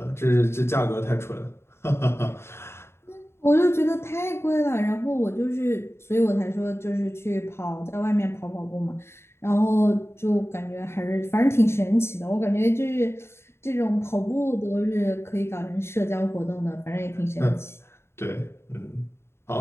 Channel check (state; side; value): late; right; 0.12 ms